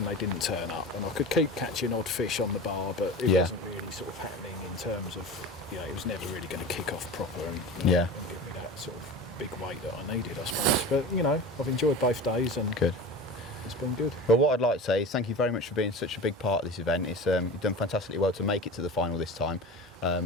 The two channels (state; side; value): normal; both; correlation 0.32